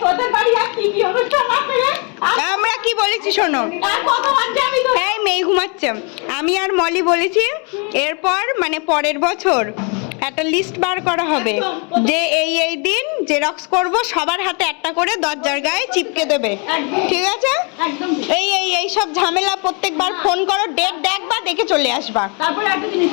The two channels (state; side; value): quieter; right; 35.1 dB